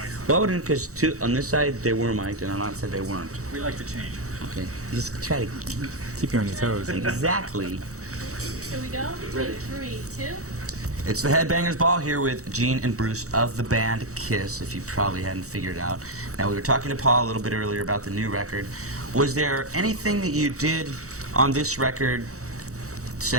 Well, because on this side they were mic'd, and on that side they weren't. We like to change. Okay. Just try to Keep you on your toes. exactly. Here we go. In 3, 2. It's the Headbangers Ball here with Gene and Bruce of the band Kiss, if you probably hadn't figured it out. Now, we were talking to Paul a little bit earlier about the new record. Was there anything that you did on this record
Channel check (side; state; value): left; late; 0.65 ms